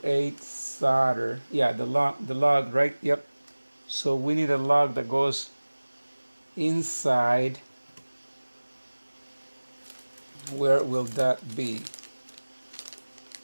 8 solder. Yeah, the lug, right? Yep. So we need a lug that goes inside. Where will that be?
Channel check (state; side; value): inverted; both; correlation -1.00